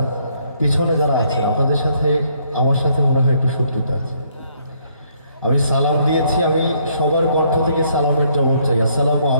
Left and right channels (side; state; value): both; inverted; correlation -0.69